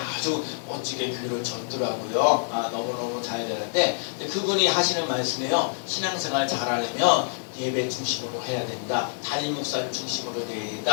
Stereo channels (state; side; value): silent; right; digital silence